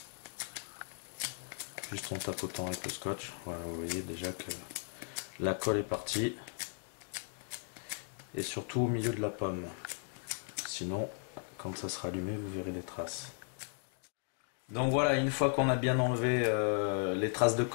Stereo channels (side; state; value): right; silent; 54 dB below the other